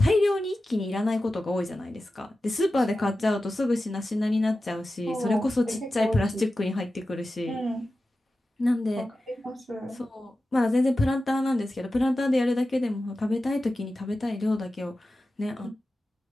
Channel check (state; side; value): normal; both; correlation 0.94